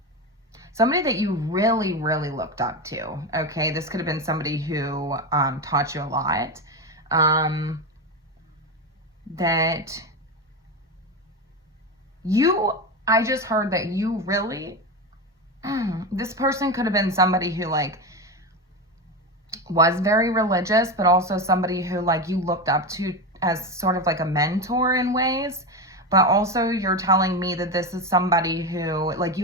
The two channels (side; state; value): both; normal; correlation 0.17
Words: somebody that you really, really looked up to, okay? This could have been somebody who taught you a lot, that I just heard that you really, this person could have been somebody who like was very religious, but also somebody who like you looked up to as sort of like a mentor in ways. But also you're telling me that this is somebody who like